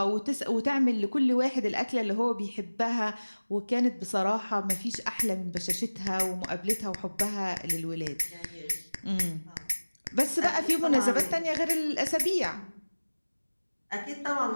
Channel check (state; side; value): inverted; both; correlation -1.00